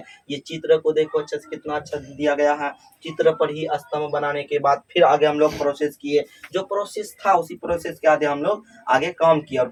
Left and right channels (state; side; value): identical; both; correlation 1.00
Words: ये चित्र को देखो अच्छे से, कितना अच्छा दिया गया है। चित्र पर ही स्तंभ बनाने के बाद फिर आगे हम लोग प्रोसेस किए, जो प्रोसेस था उसी प्रोसेस के आगे हम लोग आगे काम किया और